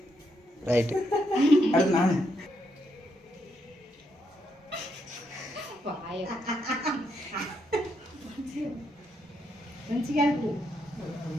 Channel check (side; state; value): both; normal; correlation 0.79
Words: ரைட். அடுத்து நானு